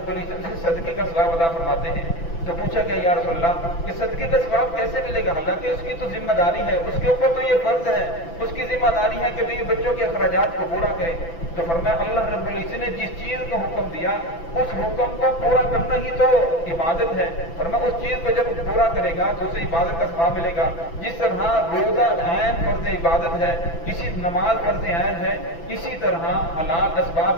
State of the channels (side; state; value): right; late; 6.0 ms